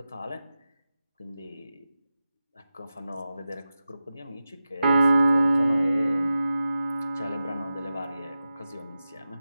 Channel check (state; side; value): inverted; both; correlation -0.93